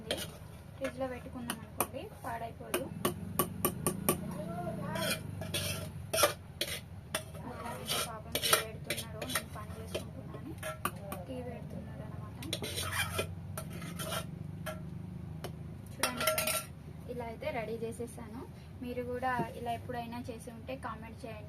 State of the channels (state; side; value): identical; both; correlation 1.00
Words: ఫ్రిడ్జ్లో పెట్టుకున్నాం అనుకోండి పాడైపోదు. పాపం టీ పెడుతున్నారు, నేను పని చేసుకుంటున్నాను, టీ పెడుతున్నారు అనమాట. చూడండి ఫ్రెండ్స్, ఇలా అయితే రెడీ చేసేసాను. మీరు కూడా ఇలా ఎప్పుడైనా చేసి ఉంటే కామెంట్